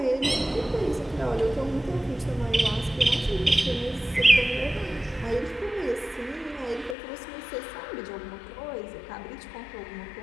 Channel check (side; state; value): right; drops out; at 7.0 s